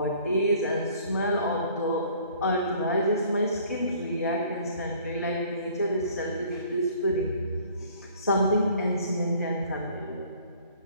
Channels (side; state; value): both; inverted; correlation -0.55